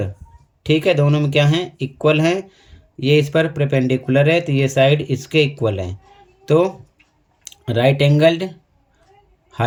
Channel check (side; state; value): both; identical; correlation 1.00